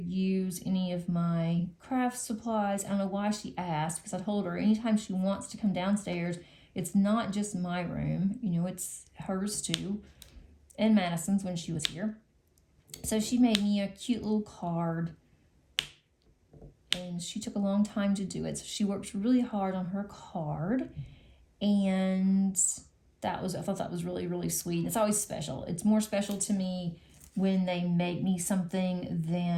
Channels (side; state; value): both; identical; correlation 1.00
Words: use any of my craft supplies. I don't know why she asked, because I told her anytime she wants to come downstairs, it's not just my room, it's hers too, and Madison's when she was here. So she made me a cute little card, and she took a long time to do it. So she worked really hard on her card, and I thought that was really, really sweet. It's always special. It's more special to me when they make me something